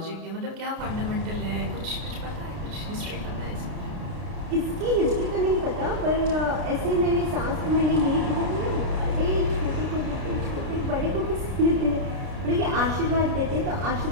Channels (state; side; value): late; left; 33 ms